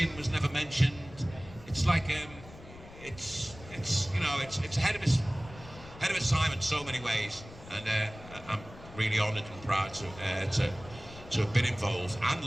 was never mentioned. It's like it's you know, it's ahead of its time in so many ways, and I'm really honoured and proud to have been involved,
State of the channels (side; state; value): left; noise; rumble, 17 dB below the sound